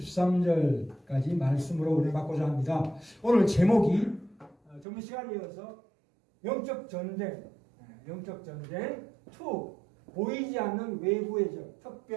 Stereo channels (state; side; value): drops out; left; at 4.9 s